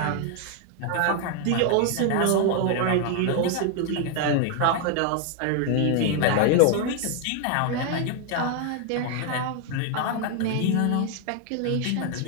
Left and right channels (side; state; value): both; different; correlation 0.00